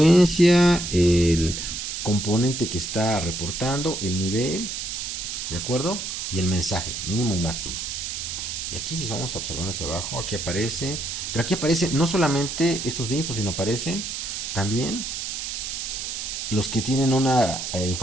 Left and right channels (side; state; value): right; noise; hiss, 5 dB below the sound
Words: el componente que está reportando, el nivel, ¿de acuerdo? Y el mensaje, mínimo y máximo. Y aquí si vamos a observar hacia abajo, aquí aparece, pero aquí aparece no solamente estos de info, sino aparecen también los que tienen una